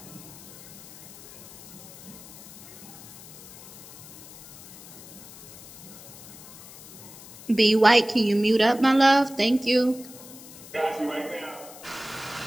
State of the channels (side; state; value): left; noise; hiss, 16 dB below the sound